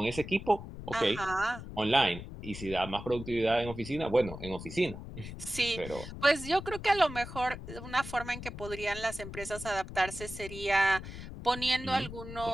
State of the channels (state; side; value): noise; left; rumble, 11 dB below the sound